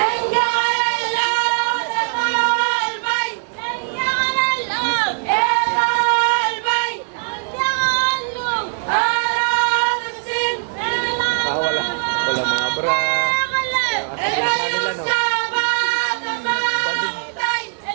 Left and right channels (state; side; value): silent; left; digital silence